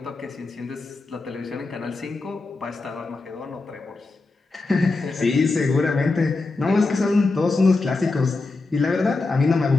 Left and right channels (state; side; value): quieter; right; 3.6 dB